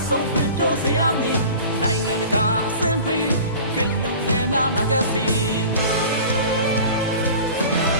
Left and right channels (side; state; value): both; inverted; correlation -0.40